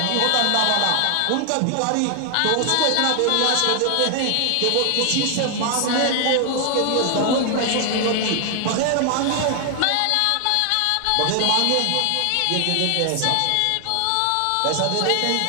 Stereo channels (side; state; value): both; different; correlation 0.00